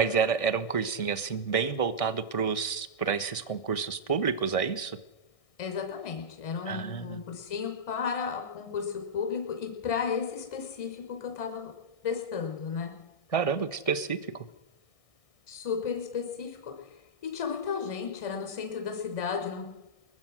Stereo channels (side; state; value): right; late; 1.6 ms